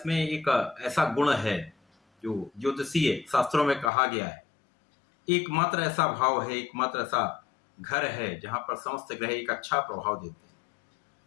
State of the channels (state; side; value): drops out; right; at 3.9 s